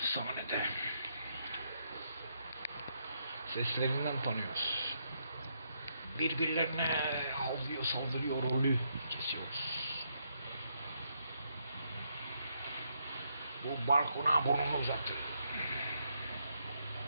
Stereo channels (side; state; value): both; inverted; correlation -0.77